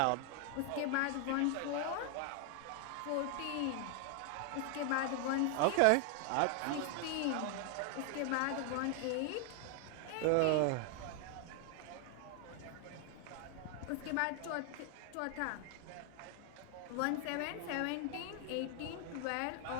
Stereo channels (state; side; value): different; both; correlation 0.00